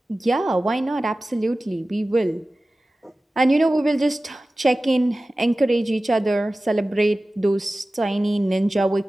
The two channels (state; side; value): normal; both; correlation 0.96